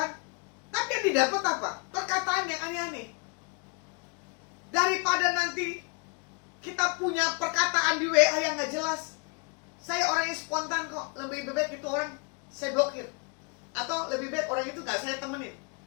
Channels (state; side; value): quieter; right; 34.2 dB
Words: tapi yang didapat apa? Perkataan yang aneh-aneh. Daripada nanti kita punya perkataan di WA yang gak jelas. Saya orang yang spontan kok. Lebih baik itu orang saya blokir. Atau lebih baik orang itu gak saya temenin.